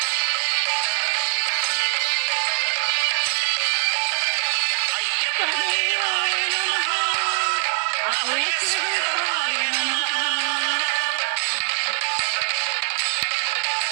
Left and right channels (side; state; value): left; silent; digital silence